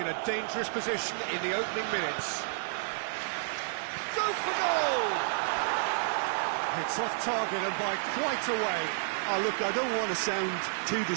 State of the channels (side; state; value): left; silent; digital silence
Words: a dangerous position in the opening minutes. Go for goal! It's off target and by quite a way. Oh, look, I don't want to sound too